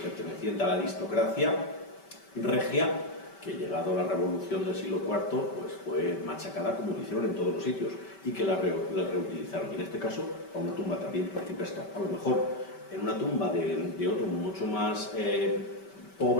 perteneciente a la aristocracia regia, que llegado a la revolución del siglo IV pues fue machacada como lo hicieron en todos los sitios y que la reutilizaron. Y en este caso, a una tumba también principesca. A lo mejor en una tumba de otro mucho más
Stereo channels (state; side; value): late; right; 5.2 ms